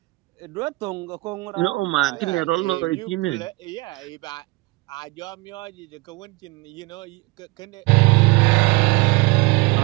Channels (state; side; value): quieter; left; 23.7 dB